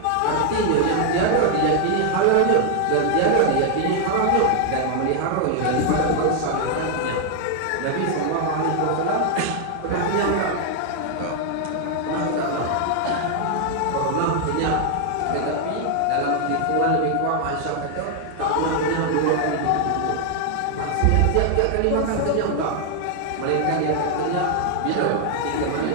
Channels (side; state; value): both; different; correlation 0.00